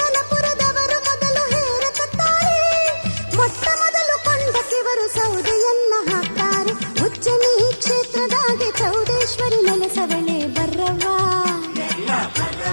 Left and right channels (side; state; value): both; inverted; correlation -1.00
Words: ಮೊದಲು ಹೇರಕತ್ತಾರೆ ಮೊಟ್ಟ ಮೊದಲು ಕೊಂಡಕ್ಕಿವರು ಸೌದೆಯನ್ನ ಹಾಕ್ತಾರೆ ಉಜ್ಜನಿ ಕ್ಷೇತ್ರದಾಗೆ ಚೌಡೇಶ್ವರಿ ನೆಲೆಸವಳೆ ಬರ್ರವ್ವ